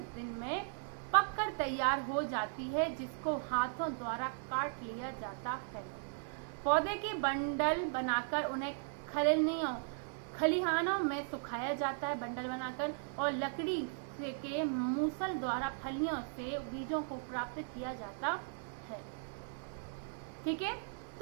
दिन में पककर तैयार हो जाती है, जिसको हाथों द्वारा काट लिया जाता है। पौधे के बंडल बनाकर उन्हें खलिहानों में सुखाया जाता है, बंडल बनाकर, और लकड़ी के मूसल द्वारा फलियों से बीजों को प्राप्त किया जाता है, ठीक है।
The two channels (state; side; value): silent; left; digital silence